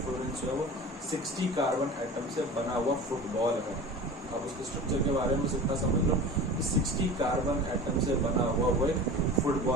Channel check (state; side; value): normal; both; correlation 0.36